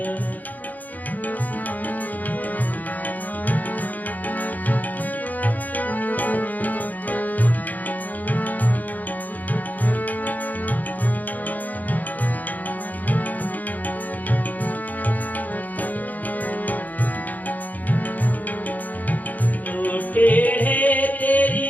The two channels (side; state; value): right; late; 0.081 ms